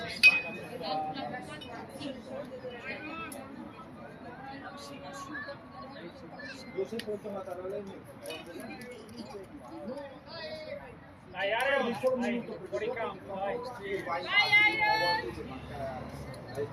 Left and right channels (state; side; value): identical; both; correlation 1.00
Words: io sempre tornato a lei. Dai Ario, dai, fuori campo, dai. Vai Airo!